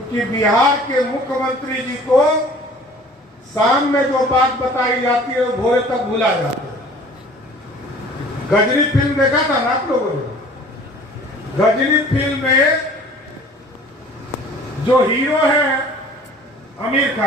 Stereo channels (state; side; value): normal; both; correlation 0.49